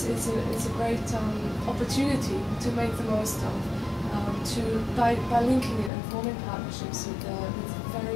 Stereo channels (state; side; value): drops out; right; at 5.9 s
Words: a great opportunity to make the most of. By linking it and forming partnerships with